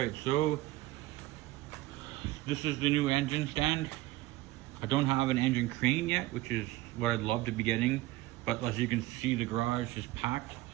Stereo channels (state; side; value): quieter; left; 17.8 dB